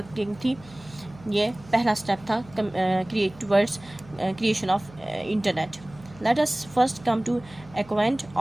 थी, ये पहला स्टेप था towards creation of internet. Let us first come to acquaint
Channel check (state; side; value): noise; right; hum, 21 dB below the sound